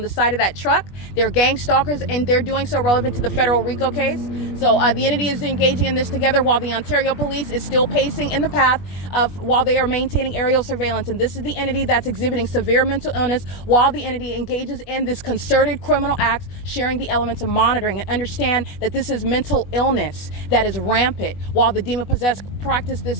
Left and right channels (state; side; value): late; right; 21 ms